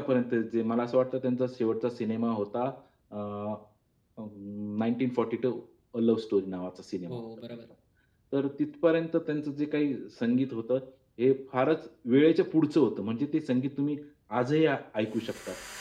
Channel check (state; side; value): identical; both; correlation 1.00